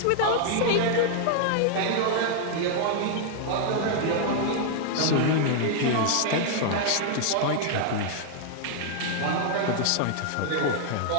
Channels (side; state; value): both; different; correlation 0.00